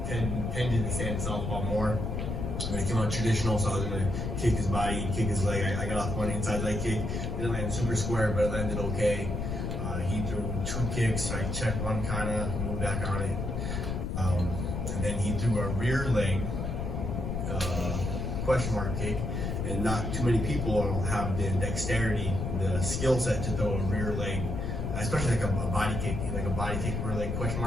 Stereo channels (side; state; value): left; noise; rumble, 2 dB below the sound